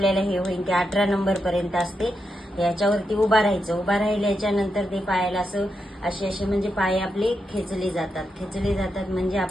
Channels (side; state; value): both; normal; correlation 0.85